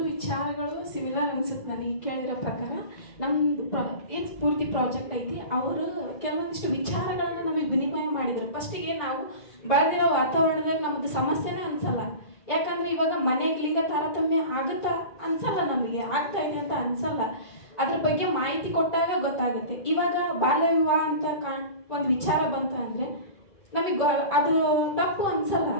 ವಿಚಾರಗಳು ಸಿಮಿಲರ್ ಅನ್ಸುತ್ತೆ ನನಗೆ ಕೇಳಿರೋ ಪ್ರಕಾರ. ನಮ್ಮದು ಏನು ಪೂರ್ತಿ ಪ್ರಾಜೆಕ್ಟ್ ಐತಿ, ಅವರು ಕೆಲವೊಂದಿಷ್ಟು ವಿಚಾರಗಳನ್ನು ನಮಗೆ ವಿನಿಮಯ ಮಾಡಿದರು. ಫಸ್ಟಿಗೆ ನಾವು ಬೆಳೆದಿರೋ ವಾತಾವರಣದಲ್ಲಿ ನಮ್ಮದು ಸಮಸ್ಯೆನೇ ಅನ್ಸಲ್ಲ. ಯಾಕಂದರೆ ಇವಾಗ ಮನೆಗೆ ಲಿಂಗ ತಾರತಮ್ಯ ಆಗುತ್ತಾ ಅನ್ಸಲ್ಲ, ನಮಗೆ ಆಗ್ತಾ ಇದೆ ಅಂತ ಅನ್ಸಲ್ಲ. ಅದ್ರ ಬಗ್ಗೆ ಮಾಹಿತಿ ಕೊಟ್ಟಾಗ ಗೊತ್ತಾಗುತ್ತೆ. ಇವಾಗ ಬಾಲ್ಯ ವಿವಾಹ ಅಂತ ಒಂದು ವಿಚಾರ ಬಂತು ಅಂದರೆ ನಮಗೆ ಅದು ತಪ್ಪು ಅನ್ಸಲ್ಲ.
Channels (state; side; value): late; right; 2.5 ms